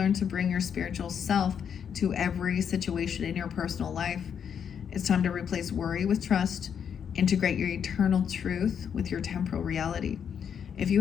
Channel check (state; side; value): quieter; right; 7.8 dB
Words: to bring your spiritual self to every situation in your personal life. It's time to replace worry with trust, integrate your eternal truth with your temporal reality. If